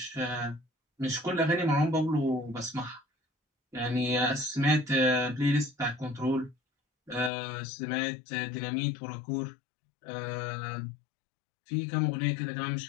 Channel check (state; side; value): drops out; right; at 7.3 s